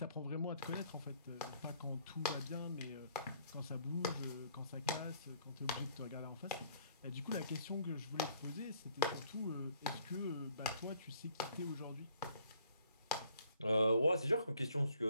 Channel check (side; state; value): both; inverted; correlation -0.63